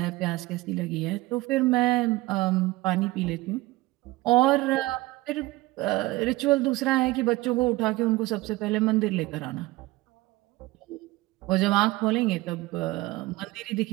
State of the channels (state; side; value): quieter; left; 19.7 dB